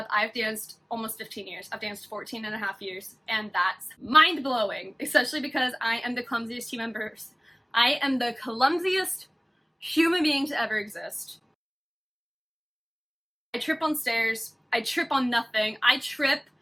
I've danced almost 15 years. I've danced 14 and a half years, and that's mind-blowing, especially because I am the clumsiest human being. I am the clumsiest human being to ever exist. I trip on stairs. I trip on nothing. I trip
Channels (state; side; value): identical; both; correlation 1.00